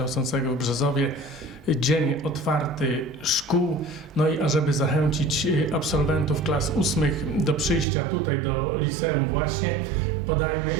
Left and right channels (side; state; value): left; drops out; at 7.9 s